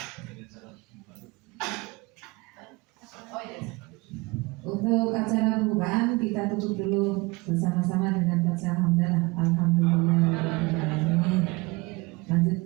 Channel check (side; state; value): left; quieter; 24.0 dB